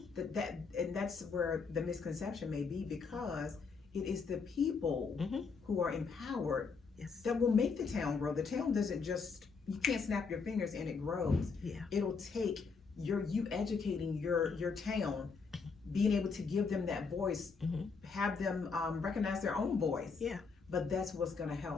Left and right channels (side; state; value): right; quieter; 5.0 dB